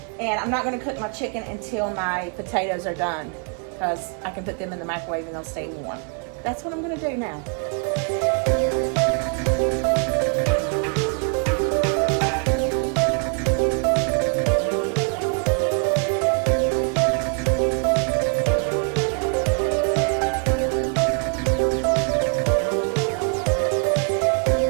and I'm not gonna cook my chicken until my potatoes are done because I can put them in the microwave and they'll stay warm. That's what I'm gonna do now.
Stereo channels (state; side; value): quieter; left; 38.4 dB